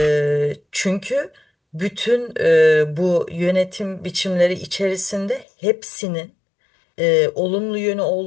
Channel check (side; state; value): right; drops out; at 5.5 s